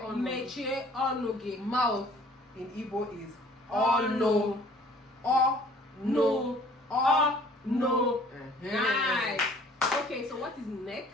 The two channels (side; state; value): both; normal; correlation 0.54